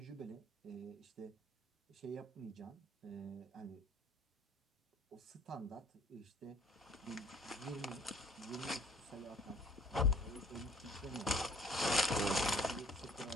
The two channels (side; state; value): both; normal; correlation 0.55